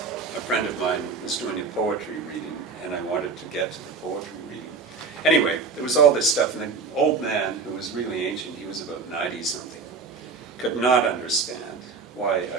a friend of mine was doing a poetry reading, and I wanted to get to the poetry reading. Anyway, there was all this stuff, and the old man, who was really ancient, he was about 90-something, could not understand why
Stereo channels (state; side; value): quieter; left; 4.7 dB